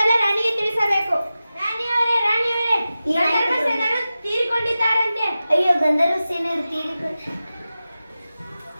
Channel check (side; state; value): both; inverted; correlation -0.94